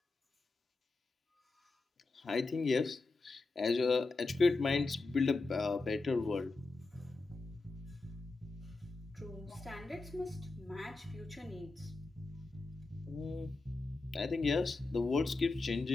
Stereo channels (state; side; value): quieter; right; 3.5 dB